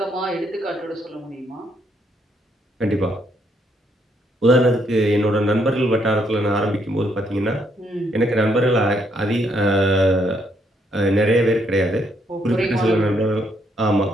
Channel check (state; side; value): normal; both; correlation 0.73